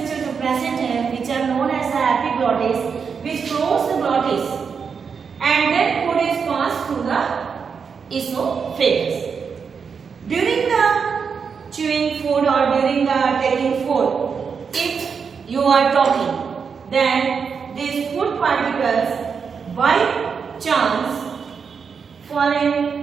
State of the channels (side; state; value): left; quieter; 6.0 dB